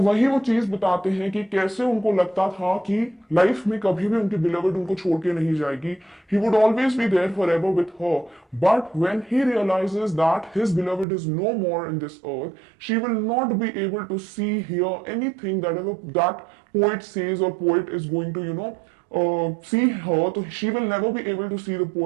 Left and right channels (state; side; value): drops out; left; at 11.1 s